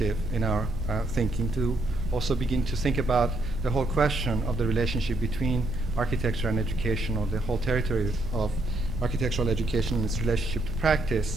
in our thinking, to also begin to think about the whole question of the relationship between architecture and education, or the whole territory of architectural education and its relationship to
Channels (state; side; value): noise; right; rumble, 7 dB below the sound